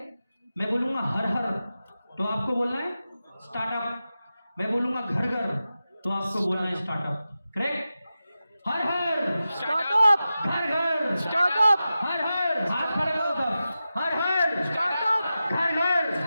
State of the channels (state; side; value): inverted; both; correlation -0.92